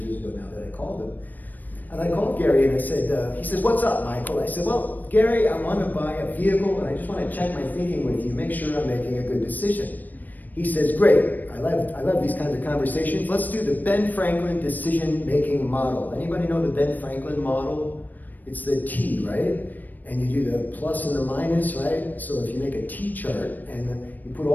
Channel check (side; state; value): right; late; 0.086 ms